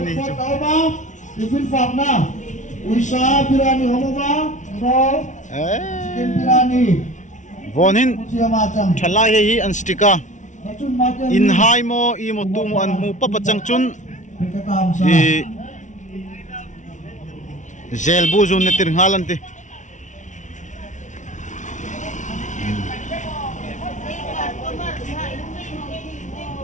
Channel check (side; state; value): right; late; 0.36 ms